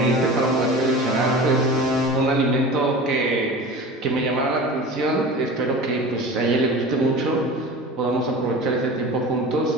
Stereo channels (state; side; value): normal; both; correlation 0.35